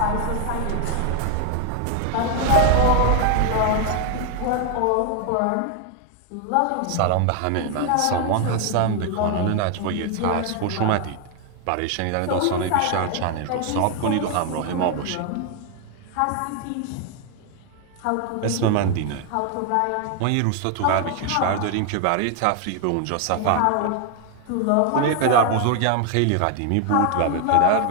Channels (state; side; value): different; both; correlation 0.01